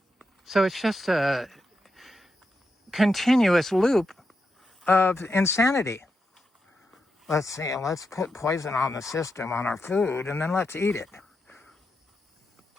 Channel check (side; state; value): both; normal; correlation 0.86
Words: So it's just a continuous loop of insanity. Let's see, let's put poison on the system, on our food, and then let's eat it.